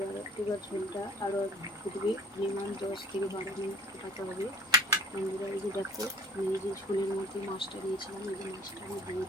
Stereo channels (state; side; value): normal; both; correlation 0.49